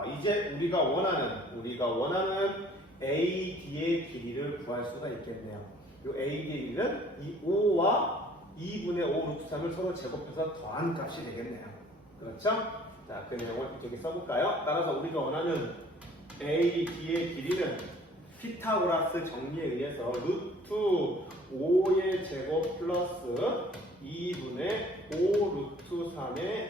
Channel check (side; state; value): both; normal; correlation 0.54